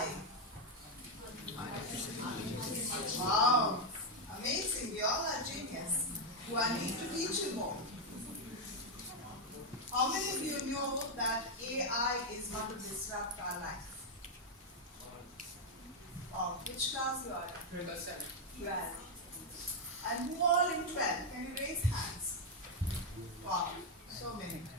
Wow. Amazing. You all are genius. Do I need to teach you more? How many of you know that AI is going to disrupt our life? Wow. Which class you are in? 12. And who all in 12? Can you raise hands? Wow, so many.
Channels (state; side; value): normal; both; correlation 0.03